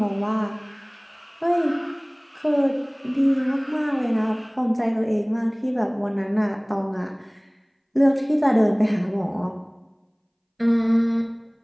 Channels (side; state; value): both; identical; correlation 1.00